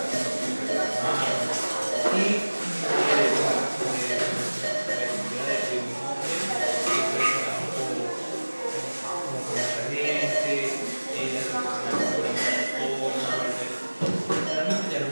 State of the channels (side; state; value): both; inverted; correlation -1.00